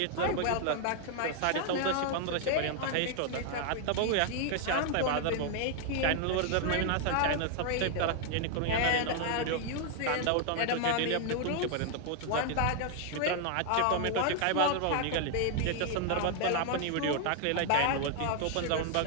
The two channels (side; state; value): both; different; correlation 0.00